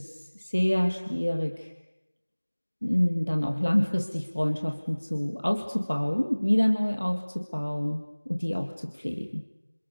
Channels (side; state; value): both; inverted; correlation -1.00